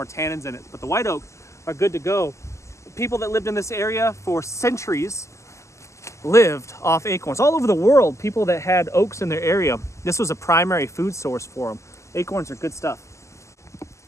tannins in it. But the white oak are good to go. People that lived in this area for centuries lived off acorns. All over the world, people that had oaks in their area, this was a primary food source for them. Acorns are good stuff.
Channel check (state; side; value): late; right; 0.14 ms